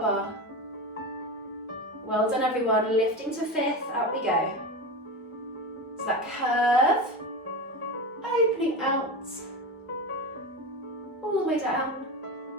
bar. Well done everyone. Lifting to fifth, up we go. So that curve, opening out, all the way down.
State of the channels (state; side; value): normal; both; correlation 0.23